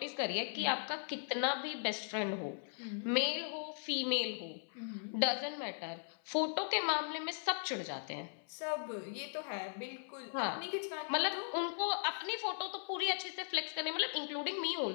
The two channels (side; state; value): right; silent; 52 dB below the other